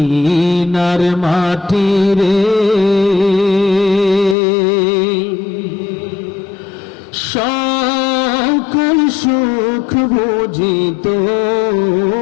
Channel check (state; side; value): drops out; right; at 4.4 s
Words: মাটিরে সকল সুখ বুঝি